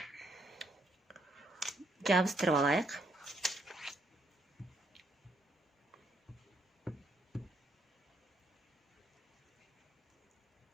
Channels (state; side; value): normal; both; correlation 0.73